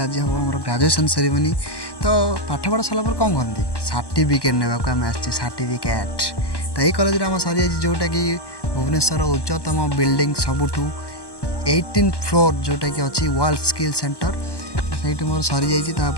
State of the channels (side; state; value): right; late; 1.1 ms